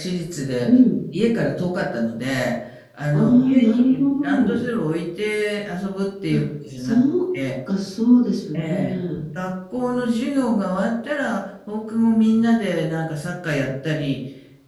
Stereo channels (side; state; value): both; identical; correlation 1.00